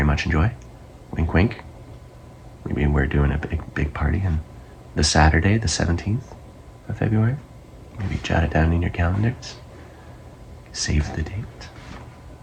much enjoy. Wink, wink. Maybe we're doing a big party on the Saturday, the 17th of February. Maybe jot it down in your calendars. Save the date.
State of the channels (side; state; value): both; identical; correlation 1.00